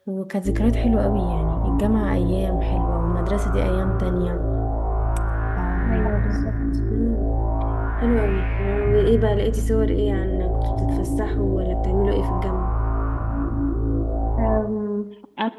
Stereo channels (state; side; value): identical; both; correlation 1.00